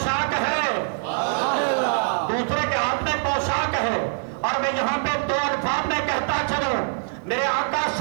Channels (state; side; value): silent; left; 63 dB below the other